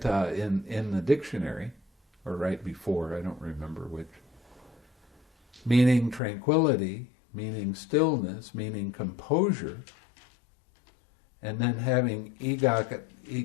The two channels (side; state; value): right; drops out; at 6.2 s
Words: in the dictionary, or right before, I don't remember which. Meaning tranquility, meaning stillness, meaning composure, and then having